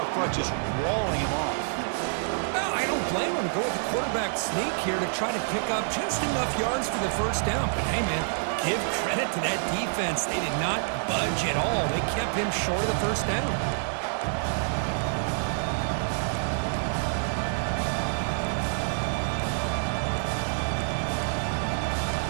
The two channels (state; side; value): silent; left; digital silence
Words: front just walling him off. No, I don't blame him. Go with the quarterback sneak here to try to pick up just enough yards for the first down. But hey, man, give credit to to that defense. They did not budge at all. They kept him short of the first down.